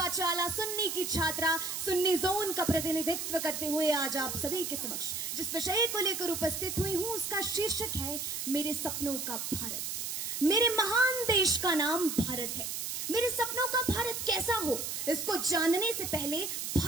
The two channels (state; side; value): noise; right; hiss, 4 dB below the sound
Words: सुन्नी की छात्रा सुन्नी जोन का प्रतिनिधित्व करते हुए आज आप सभी के समक्ष जिस विषय को लेकर उपस्थित हुई हूं उसका शीर्षक है मेरे सपनों का भारत। मेरे महान देश का नाम भारत है। मेरे सपनों का भारत कैसा हो, इसको जानने से पहले